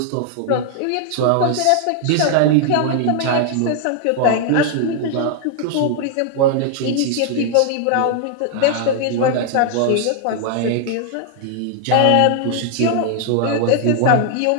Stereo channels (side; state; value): both; different; correlation 0.00